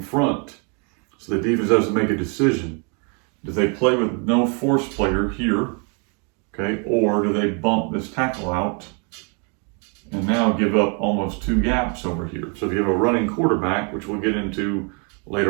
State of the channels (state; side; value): quieter; left; 36.3 dB